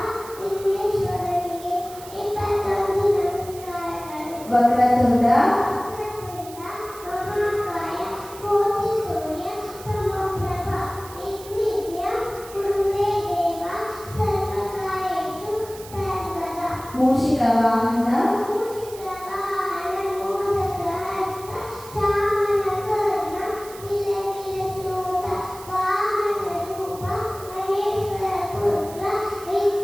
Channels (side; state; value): right; noise; hiss, 17 dB below the sound